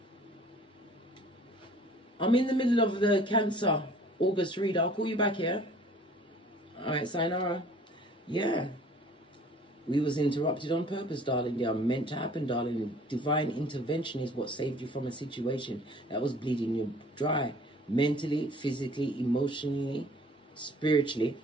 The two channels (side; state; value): both; normal; correlation 0.51